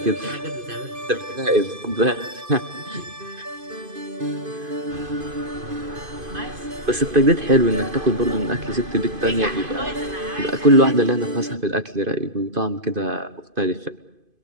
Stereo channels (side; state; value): left; late; 2.5 ms